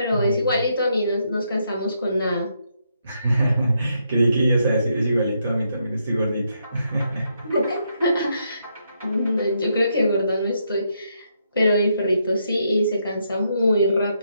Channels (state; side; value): inverted; both; correlation -0.77